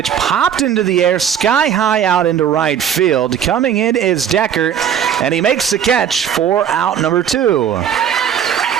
popped into the air, sky high out into right field. Coming in is Deckert, and he makes the catch for out number 2.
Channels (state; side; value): quieter; left; 8.7 dB